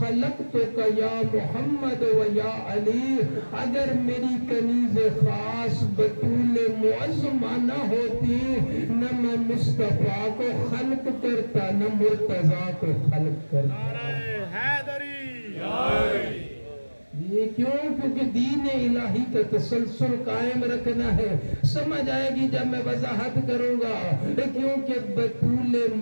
یا محمد و یا علی. اگر میری کنیز خاص بطول معظمہ نہ ہوتی نہ میں مصطفیٰ کو خلق کرتا نہ مرتضیٰ کو خلق کرتا. یہ کیوں؟ کیونکہ دین الہی کا تسلسل قائم رکھنا ہے. سمجھ آئے گی جب میں وضاحت کروں گا. کیونکہ بطول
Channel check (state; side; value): inverted; both; correlation -1.00